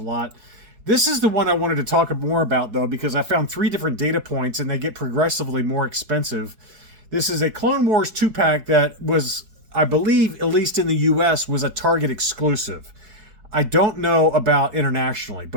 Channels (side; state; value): left; late; 4.6 ms